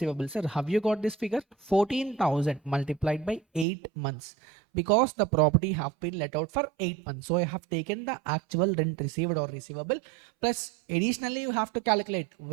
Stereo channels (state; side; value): drops out; left; at 3.7 s